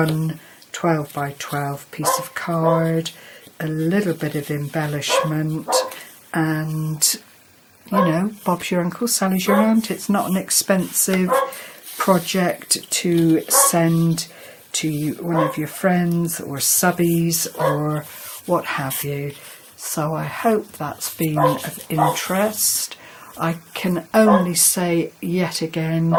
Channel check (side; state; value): both; identical; correlation 1.00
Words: 12 by 12 piece of card, a little bit of embellishment, and you know, Bob's your uncle, Sally's your aunt. It's not an expensive project to send to one of your friends or subbies or what have you. So I hope that's been of interest. I can only say yet again,